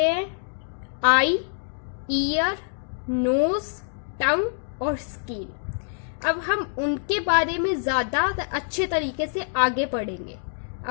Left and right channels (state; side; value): silent; right; digital silence